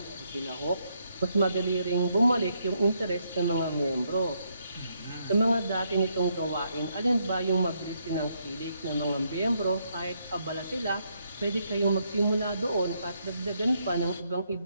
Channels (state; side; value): inverted; both; correlation -0.75